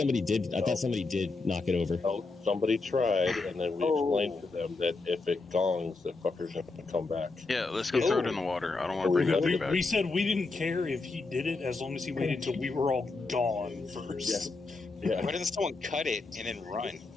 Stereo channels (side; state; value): right; quieter; 3.7 dB